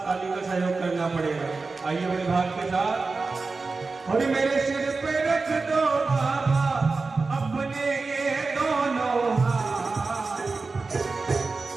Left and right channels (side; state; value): left; quieter; 4.0 dB